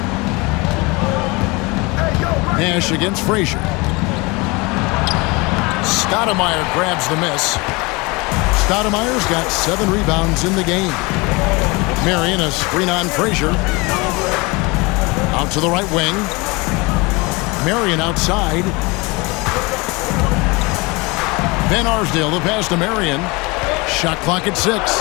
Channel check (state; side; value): quieter; right; 25.8 dB